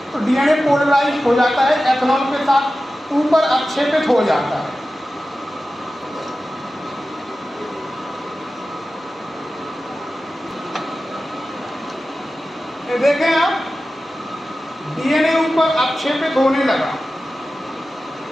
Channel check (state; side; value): normal; both; correlation 0.94